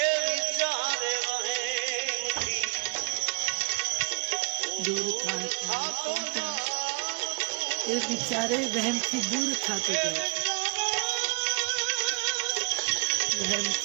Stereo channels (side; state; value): left; quieter; 32.5 dB